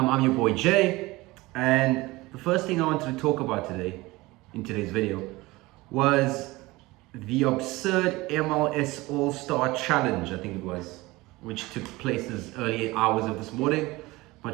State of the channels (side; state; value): left; quieter; 20.8 dB